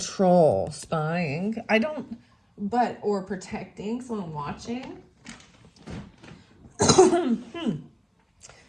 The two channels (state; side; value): identical; both; correlation 1.00